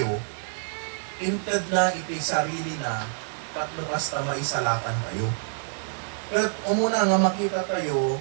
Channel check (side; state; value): left; silent; digital silence